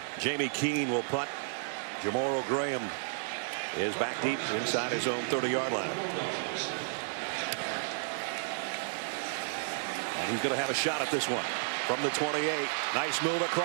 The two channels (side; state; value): left; silent; 56 dB below the other